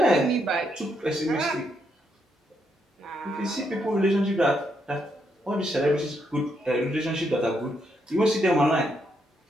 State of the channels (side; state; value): both; normal; correlation 0.78